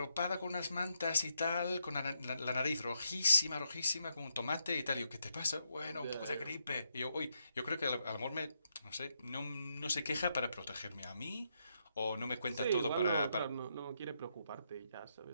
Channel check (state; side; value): inverted; both; correlation -0.80